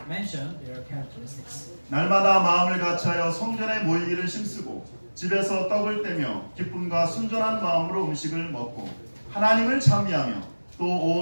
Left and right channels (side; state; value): both; inverted; correlation -1.00